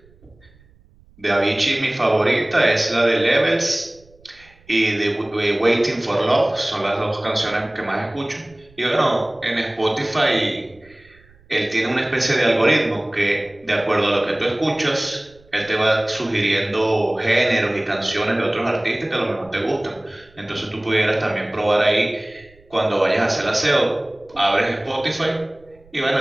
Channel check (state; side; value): noise; right; rumble, 29 dB below the sound